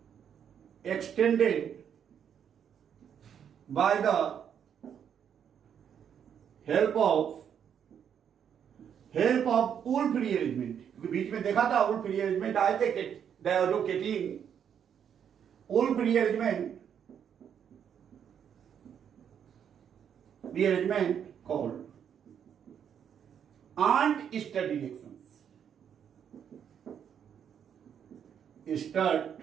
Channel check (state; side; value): quieter; left; 8.4 dB